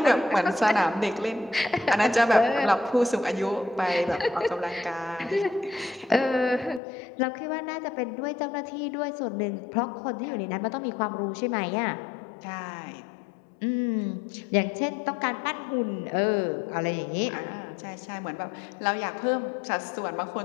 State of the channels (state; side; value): drops out; right; at 6.8 s